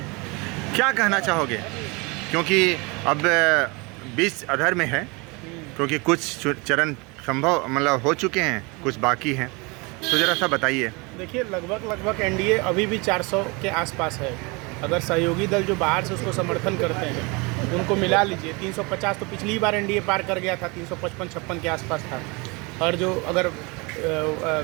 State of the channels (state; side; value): quieter; left; 27.9 dB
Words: क्या कहना चाहोगे? क्योंकि अब 20 अधर में है, क्योंकि कुछ चरण संभव मतलब हो चुके हैं, कुछ बाकी हैं, तो ज़रा सा बताइए। देखिए, लगभग एनडीए अभी भी 400 के आसपास है। अगर सहयोगी दल जो बाहर से उसको समर्थन करते हैं उनको मिला लीजिए, 350 तो पिछली बार एनडीए पार कर गया था, 355-56 के आसपास था। और जो अगर